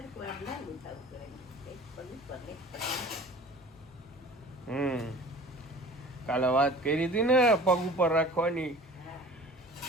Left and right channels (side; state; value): both; normal; correlation 0.43